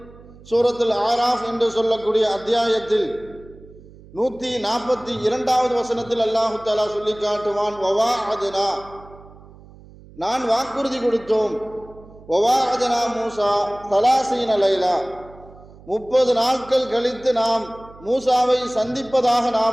சூரத்துல் ஆராஃப் என்று சொல்லக்கூடிய அத்தியாயத்தில் 142வது வசனத்தில் அல்லாஹு தஆலா சொல்லி காட்டுவான், வவாஅத்னா, நான் வாக்குறுதி கொடுத்தோம். வவாஅத்னா மூசா 30 லைலா, 30 நாட்கள் கழித்து நாம் மூசாவை சந்திப்பதாக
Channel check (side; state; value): right; noise; hum, 22 dB below the sound